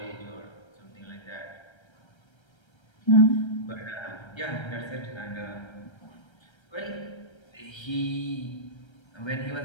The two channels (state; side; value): late; right; 1.3 ms